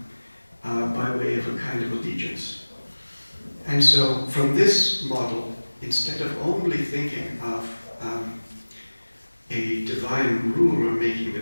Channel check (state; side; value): inverted; both; correlation -1.00